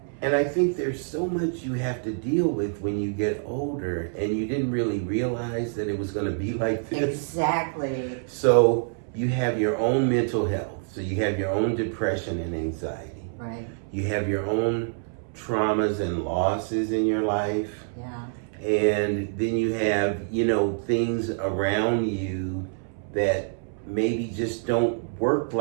And I think there's so much you have to deal with when you get older, and you didn't really realize that it was going to be like this. Exactly. So you have your own mental health. So you have your own depression and anxiety. Right. You have your own traumas and losses in your life. Yeah. And then you have, you know, things around you that maybe just don't work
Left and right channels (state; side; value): silent; left; 61 dB below the other